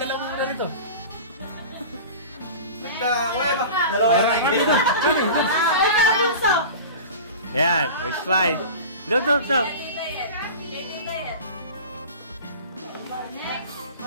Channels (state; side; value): inverted; both; correlation -0.34